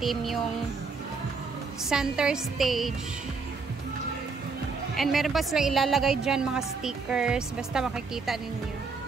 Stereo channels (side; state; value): left; quieter; 4.6 dB